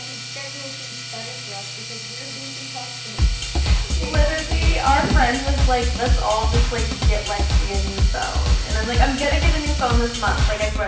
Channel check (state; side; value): identical; both; correlation 1.00